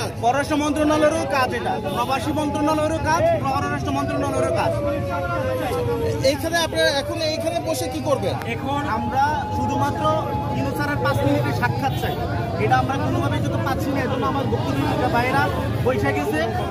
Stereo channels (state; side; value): noise; left; rumble, 29 dB below the sound